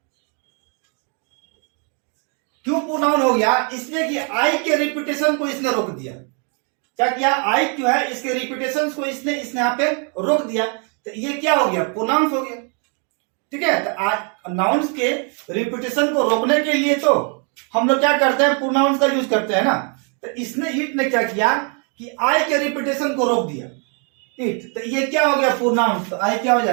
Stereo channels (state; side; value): quieter; left; 38.7 dB